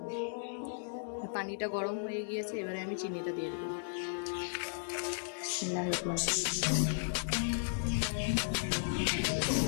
পানিটা গরম হয়ে গিয়েছে, এবারে আমি চিনিটা দিয়ে দেবো।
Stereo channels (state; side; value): silent; right; digital silence